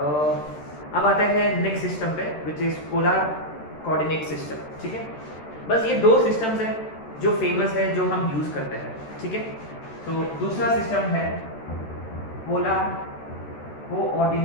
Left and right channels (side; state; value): right; late; 13 ms